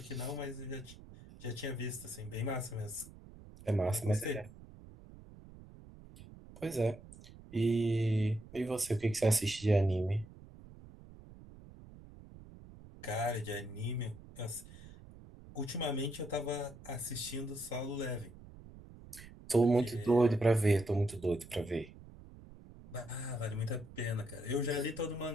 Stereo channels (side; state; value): right; noise; rumble, 18 dB below the sound